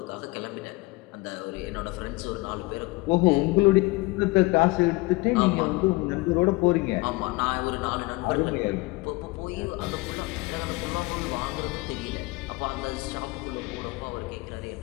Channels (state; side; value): quieter; right; 23.3 dB